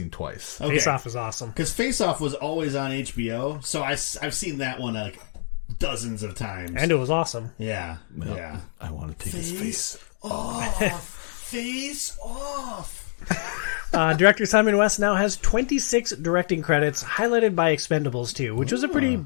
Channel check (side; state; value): right; silent; digital silence